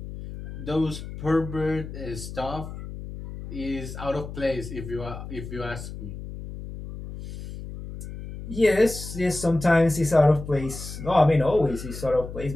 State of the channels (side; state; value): left; noise; hum, 10 dB below the sound